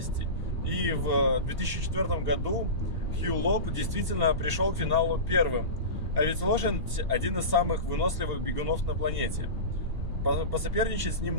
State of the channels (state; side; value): late; left; 2.7 ms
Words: И в 2004 году Хью Лоб действительно пришел к финалу первым. А ведь лошадь один из самых выносливых бегунов на планете. Посоперничать с ним